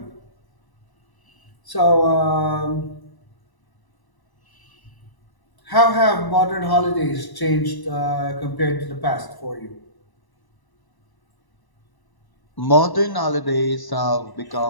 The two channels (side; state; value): right; late; 1.0 ms